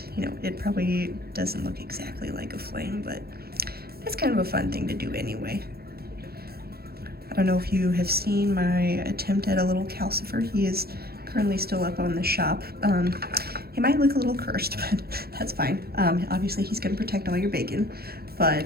you know, it probably doesn't look exactly like a flame, but it's kind of a fun thing to do anyway. I don't know if you have seen my attempt at a little calcifer. He is currently still up on the shop. He might look a little cursed, but that's fine. Obviously he's gonna protect all your bacon,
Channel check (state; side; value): late; left; 0.45 ms